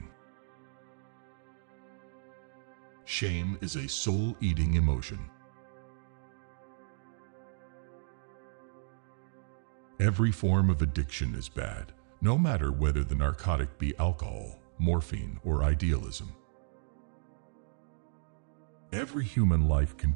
Shame is a soul-eating emotion. Every form of addiction is bad, no matter whether the narcotic be alcohol, morphine, or idealism. Every human life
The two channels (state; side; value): silent; left; digital silence